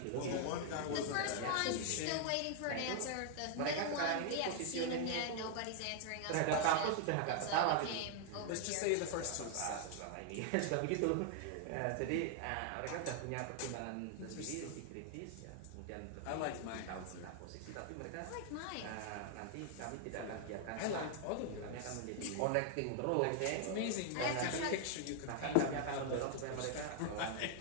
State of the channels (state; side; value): different; both; correlation 0.00